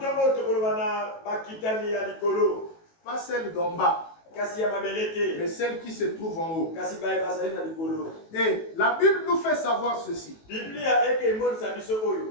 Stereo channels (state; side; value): late; right; 18 ms